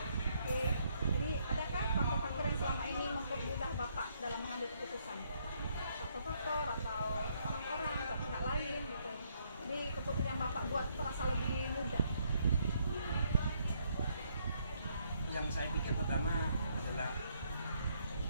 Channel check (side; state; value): both; inverted; correlation -0.71